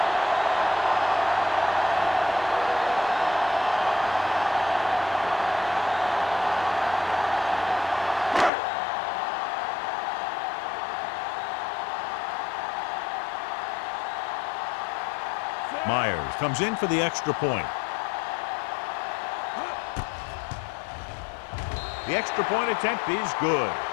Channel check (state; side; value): drops out; right; at 8.5 s